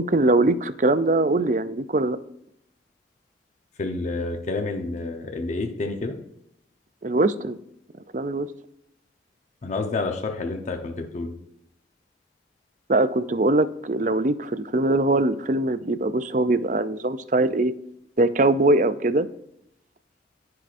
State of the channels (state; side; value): normal; both; correlation 0.32